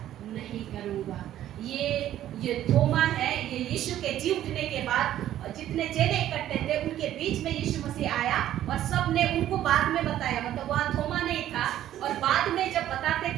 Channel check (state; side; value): quieter; left; 12.3 dB